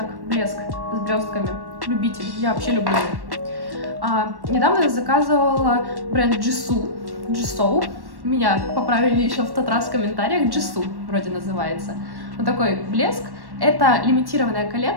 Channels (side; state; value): left; late; 1.1 ms